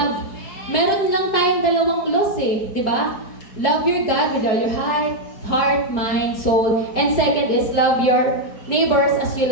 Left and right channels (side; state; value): right; late; 5.1 ms